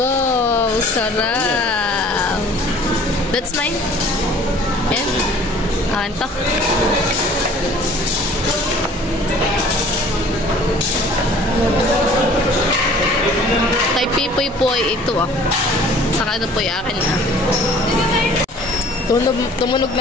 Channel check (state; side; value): normal; both; correlation 0.50